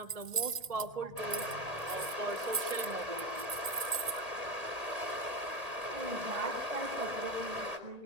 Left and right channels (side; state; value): left; late; 1.8 ms